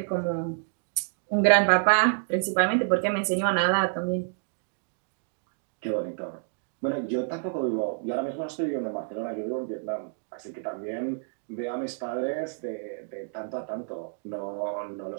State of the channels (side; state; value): left; silent; digital silence